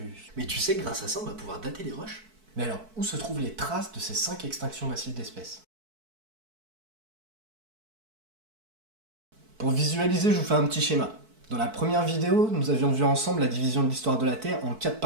Mais tu sais que grâce à ça, on va pouvoir dater les roches. Mais alors, où se trouvent les traces de ces 5 extinctions massives d'espèces? Pour visualiser, je vous fais un petit schéma. Dans la première vidéo, nous avions vu ensemble la division de l'histoire de la Terre en 4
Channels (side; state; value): left; late; 4.6 ms